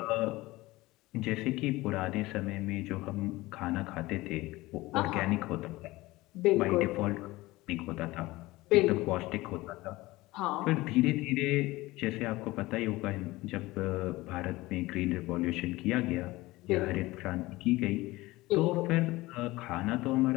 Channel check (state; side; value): quieter; right; 19.7 dB